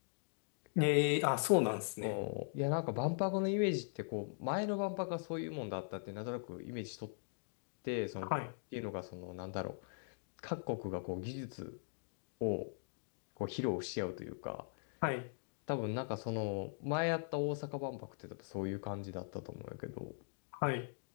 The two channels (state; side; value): silent; right; digital silence